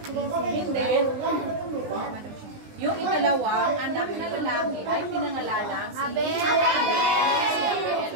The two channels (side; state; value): left; late; 19 ms